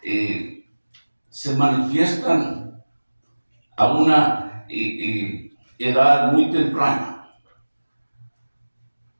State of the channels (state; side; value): inverted; both; correlation -1.00